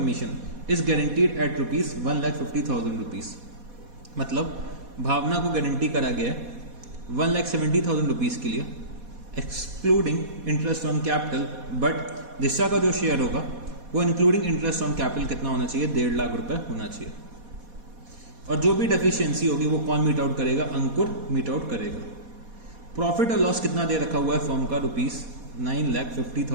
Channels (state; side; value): late; left; 4.2 ms